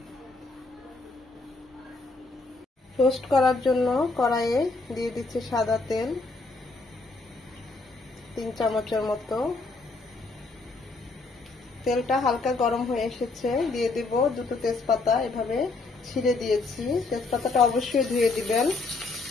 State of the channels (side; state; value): right; quieter; 3.6 dB